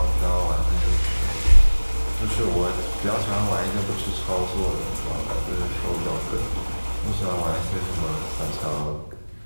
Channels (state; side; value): inverted; both; correlation -1.00